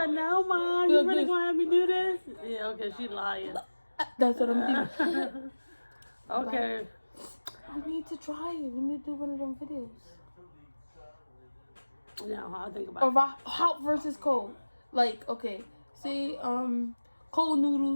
no, Mom. You really gonna have me do this? Yeah, okay, she lying. That's what I'm doing. Okay. We need to try it. We need to do one of them videos. No, I'll think about Or it. hot versus cold. Like, okay, say cold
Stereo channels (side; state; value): both; inverted; correlation -1.00